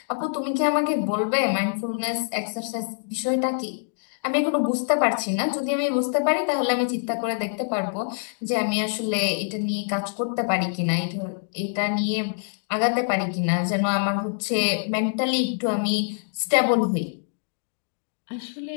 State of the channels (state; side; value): silent; right; digital silence